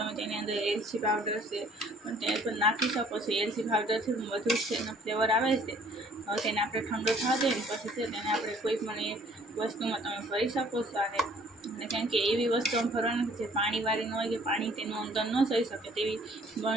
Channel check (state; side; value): normal; both; correlation 0.57